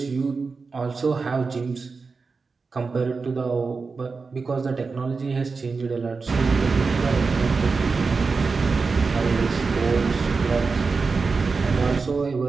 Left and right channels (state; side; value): quieter; left; 4.5 dB